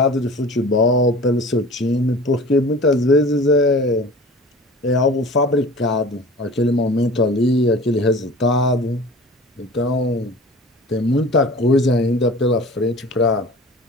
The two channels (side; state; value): both; normal; correlation 0.40